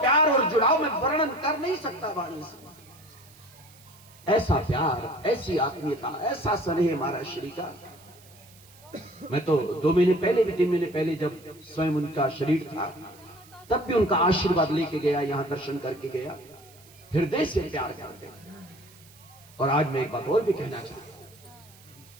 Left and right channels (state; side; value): noise; right; hiss, 25 dB below the sound